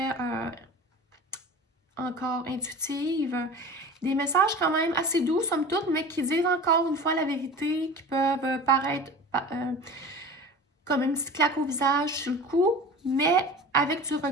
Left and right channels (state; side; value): normal; both; correlation 0.37